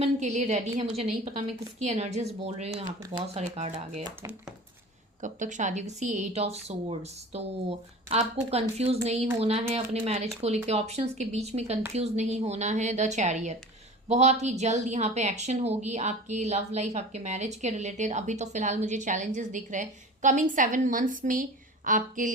के लिए रेडी है। मुझे नहीं पता मैं किसकी एनर्जीज बोल रही हूँ, यहाँ पे बहुत सारे कार्ड आ गए थे। कब तक शादी होगी, सी 8 ऑफ सोर्ड्स। तो आपको कंफ्यूज नहीं होना है अपने मैरिज को लेके, ऑप्शंस के बीच में कंफ्यूज नहीं होना है। द चैरियट, बहुत ही जल्द यहाँ पे एक्शन होगी आपकी लव लाइफ, आपके मैरिज के रिलेटेड। अभी तो फिलहाल मुझे चैलेंजेस दिख रहे हैं, कमिंग 7 मंथ्स में आपके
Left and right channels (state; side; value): normal; both; correlation 0.37